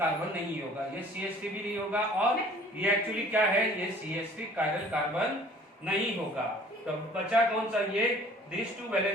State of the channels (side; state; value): both; normal; correlation 0.52